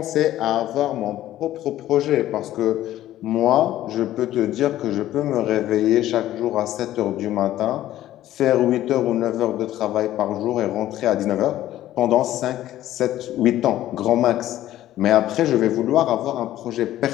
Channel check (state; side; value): quieter; right; 13.6 dB